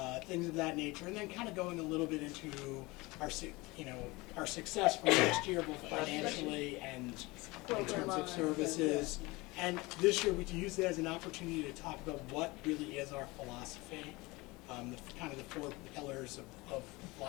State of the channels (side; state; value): right; quieter; 23.0 dB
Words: Things of that nature, and then kind of going a little bit into our success from last year, both financially and in terms of services. And this year, we use it as an opportunity to talk about what really is our philosophy, kind of the 4 pillars of